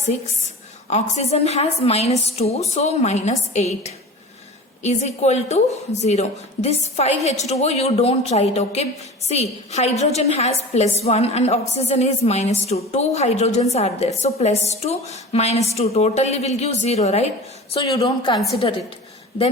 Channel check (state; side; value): normal; both; correlation 0.35